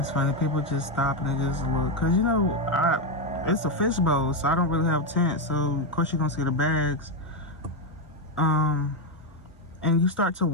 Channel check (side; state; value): both; normal; correlation 0.07